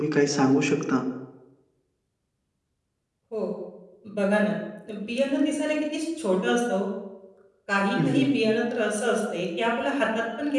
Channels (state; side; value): identical; both; correlation 1.00